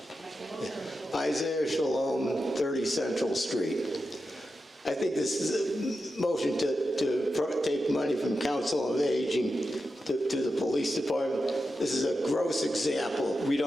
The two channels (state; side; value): normal; both; correlation 0.90